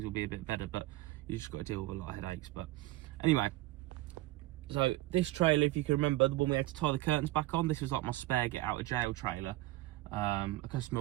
will be a bit better. But you just got to deal with a lot of headaches. But anyway. So this trailer, if you can remember, the one we had to tie the curtains back on, this was like my spare get out of jail trailer. A customer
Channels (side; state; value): left; quieter; 17.8 dB